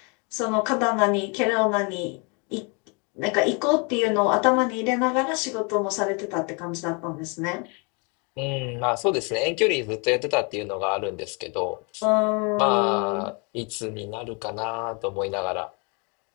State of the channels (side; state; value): right; quieter; 33.1 dB